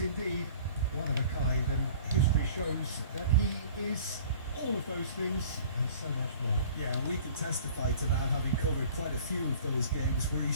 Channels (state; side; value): inverted; both; correlation -0.47